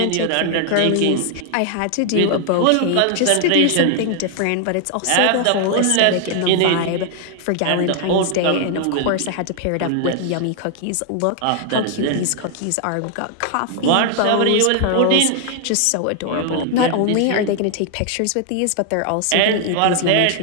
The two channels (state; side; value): different; both; correlation 0.00